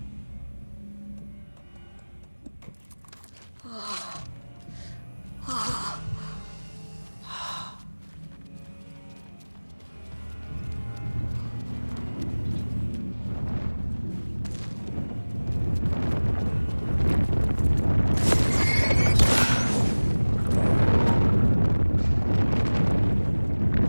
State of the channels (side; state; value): both; inverted; correlation -1.00